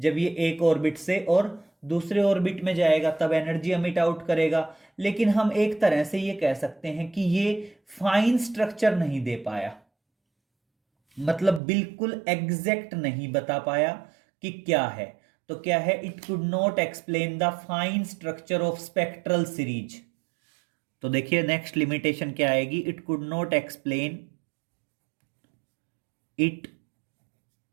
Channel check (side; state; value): left; drops out; at 11.6 s